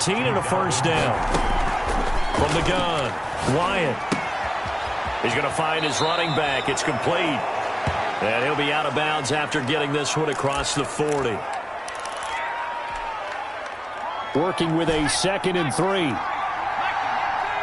and a first down. From the gun, Wyatt. He's going to find his running back. It's complete. And he'll be out of bounds after getting this one across the 40. Working with a 2nd and 3.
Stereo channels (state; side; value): identical; both; correlation 1.00